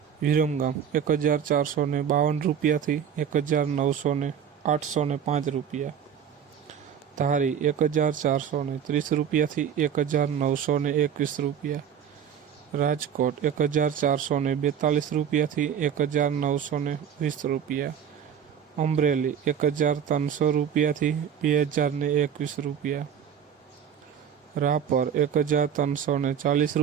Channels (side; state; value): left; quieter; 8.4 dB